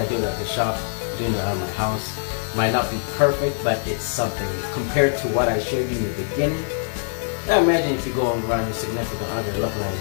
do it at the shop, doing it at my house. Might not be perfect, but it's something compared to what I showed you in the beginning. Now imagine if you go around your significant other looking like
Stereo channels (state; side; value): silent; right; 63 dB below the other